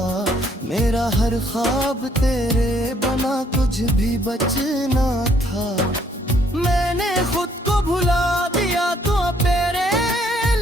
मेरा हर ख्वाब तेरे बना कुछ भी बचना था। मैंने खुद को भुला दिया तो तेरे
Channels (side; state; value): both; normal; correlation 0.67